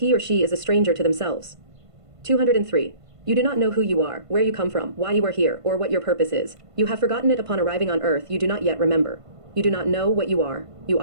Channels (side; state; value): left; late; 1.5 ms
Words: or she is a stranger to themselves. 203. You do not know who you are, where you come from, why you are here, or what your purpose is. You have forgotten it upon arriving on earth. You do not yet remember. You do not know what you are. You